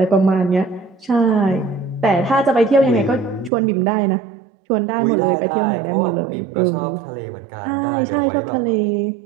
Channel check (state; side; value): drops out; left; at 3.5 s